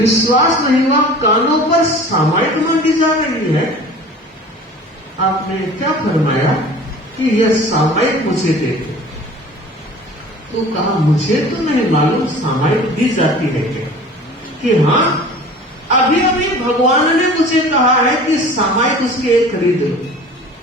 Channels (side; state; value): both; normal; correlation 0.43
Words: नहीं हुआ, कानों पर सामायिक मांगी जा रही है। आपने क्या फरमाया कि यह सामायिक मुझे दे दो। तो कहा मुझे तो नहीं मालूम सामायिक दी जाती है क्या? कि हाँ अभी अभी भगवान ने मुझे कहा है कि सामायिक उसके एक खरीद लो।